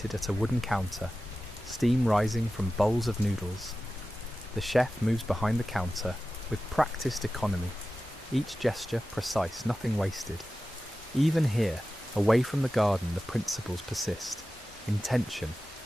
at a wooden counter, steam rising from bowls of noodles. The chef moves behind the counter with practiced economy, each gesture precise, nothing wasted. Even here, away from the garden, the principles persist. Intention,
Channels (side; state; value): both; normal; correlation 0.94